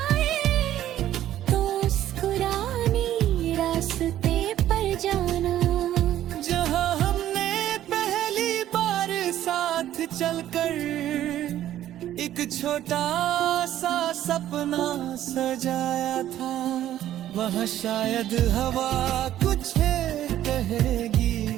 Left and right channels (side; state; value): left; quieter; 12.4 dB